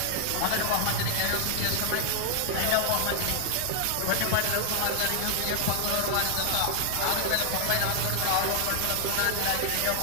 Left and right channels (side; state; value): both; different; correlation -0.01